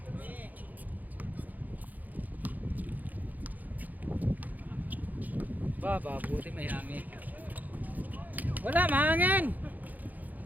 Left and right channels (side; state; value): left; late; 0.082 ms